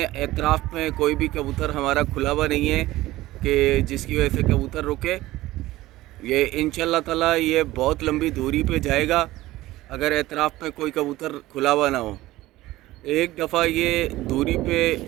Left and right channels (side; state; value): left; quieter; 17.0 dB